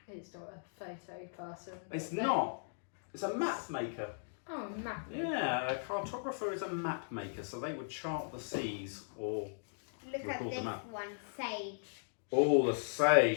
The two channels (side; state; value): right; silent; digital silence